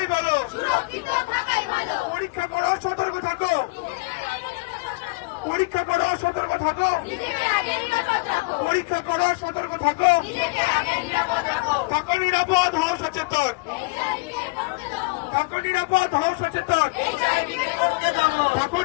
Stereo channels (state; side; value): quieter; right; 26.7 dB